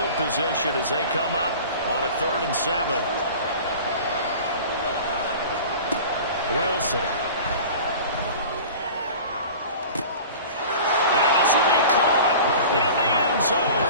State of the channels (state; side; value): inverted; both; correlation -0.39